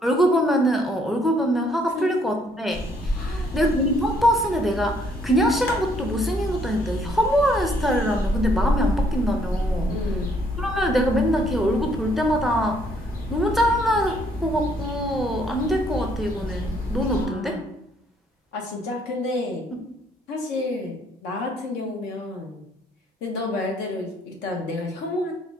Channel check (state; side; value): normal; both; correlation 0.67